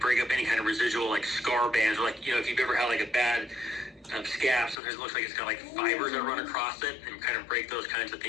up any kind of residual like scar bands, or like, if you've ever had like a bad scab, sometimes it looks like it's got like fibers that run across it, and kind of break those kinds of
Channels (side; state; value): right; drops out; at 4.8 s